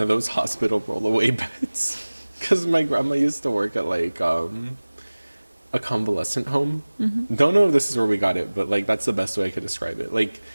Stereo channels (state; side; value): inverted; both; correlation -1.00